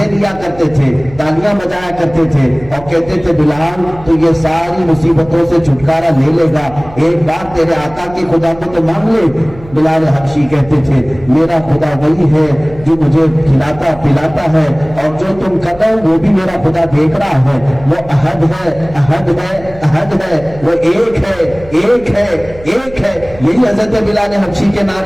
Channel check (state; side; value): noise; right; hum, 19 dB below the sound